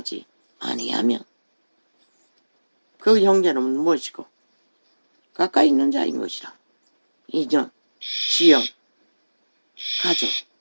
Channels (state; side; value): inverted; both; correlation -1.00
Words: 아니하면 그 형제는 무엇이고 가까이 있는 자인 것이라. 인연, 지연, 가족.